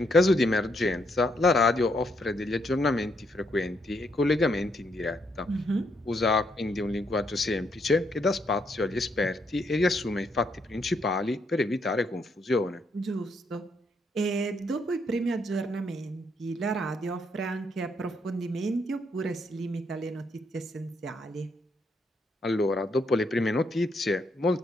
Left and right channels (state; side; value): normal; both; correlation 0.75